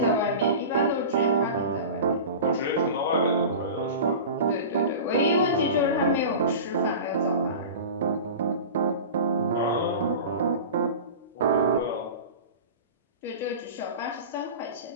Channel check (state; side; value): inverted; both; correlation -0.32